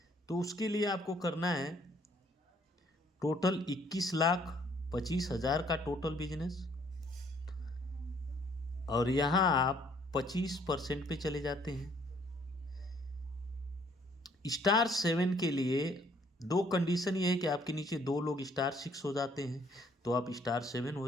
तो उसके लिए आपको करना है टोटल 21,25,000 का टोटल बिजनेस और यहाँ आप 25% पे चले जाते हैं। स्टार 7 के लिए दो कंडीशन ये है कि आपके नीचे दो लोग स्टार 6 हो जाते हैं तो आप स्टार 7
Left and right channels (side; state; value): both; normal; correlation 0.63